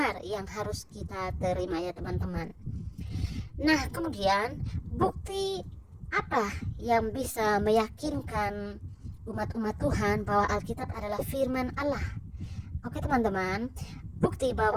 yang harus kita terima ya teman-teman. Nah, kemudian bukti apa yang bisa meyakinkan umat-umat Tuhan bahwa Alkitab adalah firman Allah? Oke teman-teman, bukti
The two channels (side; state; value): both; identical; correlation 1.00